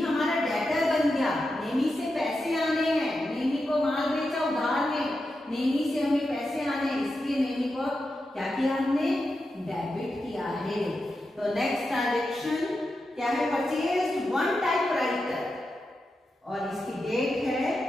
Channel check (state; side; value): normal; both; correlation 0.89